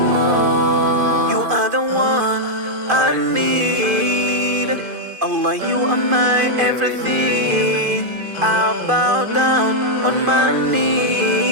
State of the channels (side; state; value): left; late; 2.5 ms